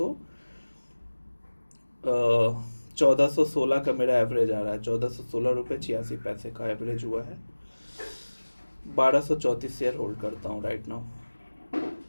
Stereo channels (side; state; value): both; inverted; correlation -1.00